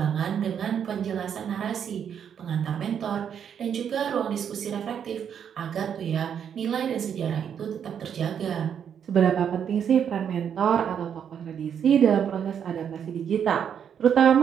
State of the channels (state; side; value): quieter; left; 8.2 dB